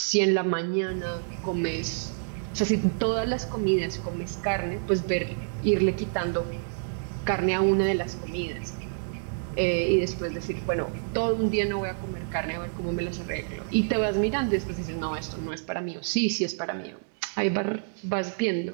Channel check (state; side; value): silent; left; digital silence